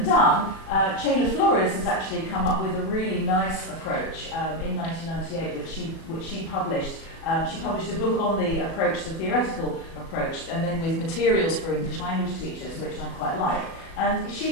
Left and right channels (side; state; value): right; late; 37 ms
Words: done. Chayla Flores has actually come up with a really nice approach in 1998, which she published. She published a book on the approach, the theoretical approach, and then with materials for English language teachers, which I quite like. And she